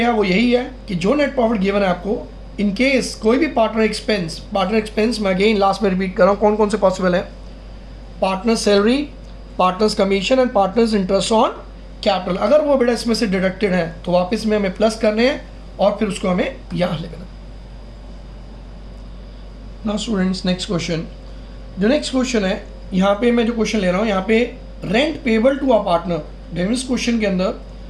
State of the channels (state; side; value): identical; both; correlation 1.00